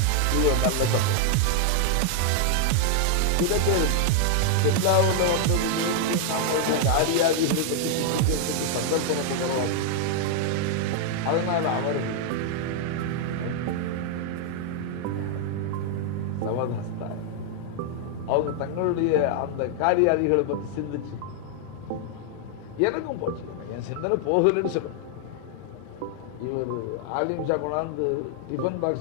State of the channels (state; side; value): different; both; correlation 0.00